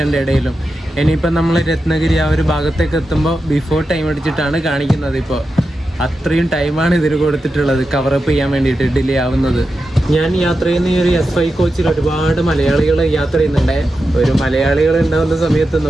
ഇടയിലും. ഇനിയിപ്പം നമ്മൾ രത്നഗിരി ആ ഒരു ഭാഗത്തേക്ക് എത്തുമ്പോൾ ബിഫോർ ടൈം അടിച്ചിട്ടാണ് കാണിക്കുന്നത്. ഇപ്പോൾ അത്രയും ടൈമാണ് ഇതിന് കൊടുത്തിട്ടുള്ളത് കവറപ്പ് ചെയ്യാൻ വേണ്ടിയിട്ട് ഡിലേ ആവുന്നത്. ഞാൻ യാത്ര ചെയ്യുന്ന ഈ ഒരു S5 കോച്ചിൽ ഒരുപാട് മലയാളികൾ യാത്ര ചെയ്യുന്നുണ്ട്. ഒരു മലയാളികൾ ഉണ്ടാകുന്ന സമയത്ത്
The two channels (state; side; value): normal; both; correlation 0.90